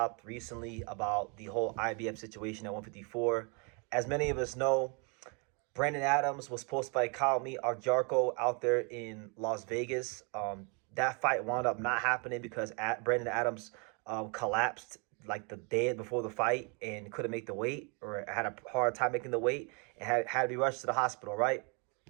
recently about the whole IBF situation at 154. As many of us know, Brandon Adams was supposed to fight Agyarko out there in Las Vegas. That fight wound up not happening because Brandon Adams collapsed like the day before the fight and couldn't make the weight, or had a hard time making the weight, and had to be rushed to the hospital, right?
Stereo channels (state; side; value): quieter; left; 33.8 dB